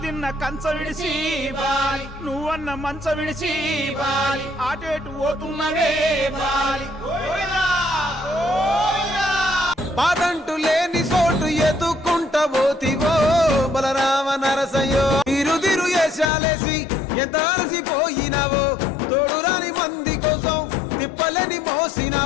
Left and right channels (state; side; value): drops out; right; at 16.3 s